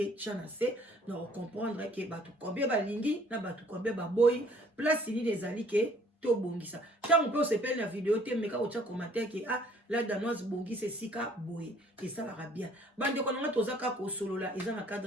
tchana se na comprendre que batu combien ba lingi na batu combien ba boy place ni des ali ke to bongisa tango pe o sepeli na vidéo te meka o tcha commentaire ke la danoise bongisa sika boy et ça la bien bande ko nga tozaka ko solola eza na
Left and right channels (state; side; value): normal; both; correlation 0.59